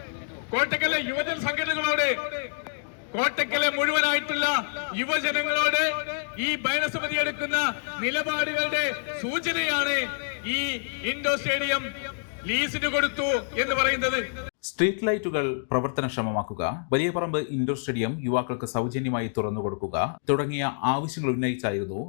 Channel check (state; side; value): silent; right; digital silence